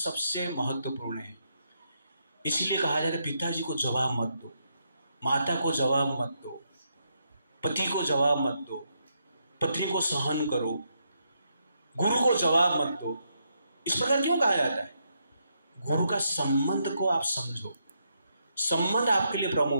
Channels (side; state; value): both; inverted; correlation -0.79